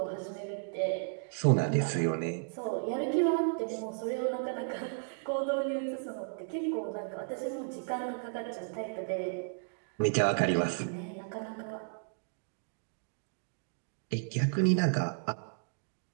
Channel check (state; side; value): silent; left; digital silence